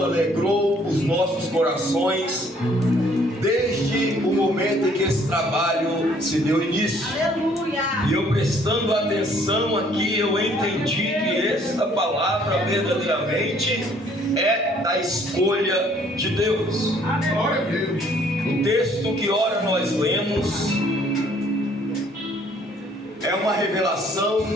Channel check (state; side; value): normal; both; correlation 0.61